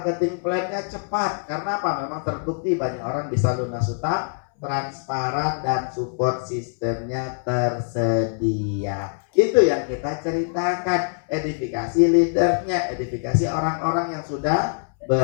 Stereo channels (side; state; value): right; silent; 63 dB below the other